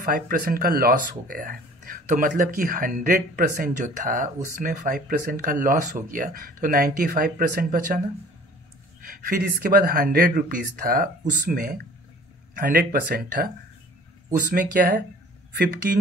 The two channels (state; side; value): normal; both; correlation 0.49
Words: का लॉस हो गया है। तो मतलब कि 100% जो था उसमें 5% का लॉस हो गया, तो 95% बचा ना। फिर इसके बाद 100 रुपीज़ था, उसमें 100% था, उसमें क्या है